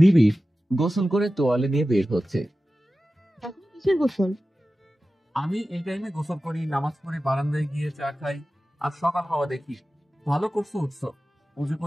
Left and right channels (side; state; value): both; normal; correlation 0.95